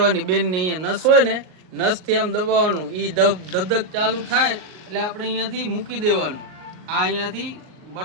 બેનની અહીંયા નસ હોય ને, નસથી આમ દબાવવાનું, એ ધબધક ચાલુ થાય એટલે આપણે અહીંયાથી મૂકી દેવાનું. આ અહીંયાથી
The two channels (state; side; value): late; left; 38 ms